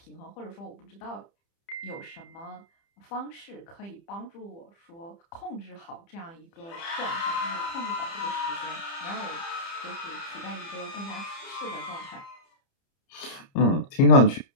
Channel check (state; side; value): late; right; 30 ms